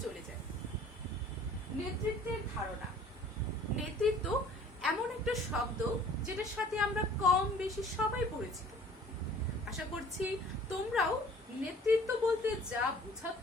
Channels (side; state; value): both; normal; correlation 0.51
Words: চলে যাই। নেতৃত্বের ধারণা। নেতৃত্ব এমন একটা শব্দ যেটার সাথে আমরা কম বেশি সবাই পরিচিত। আশা করছি তোমরাও নেতৃত্ব বলতে যা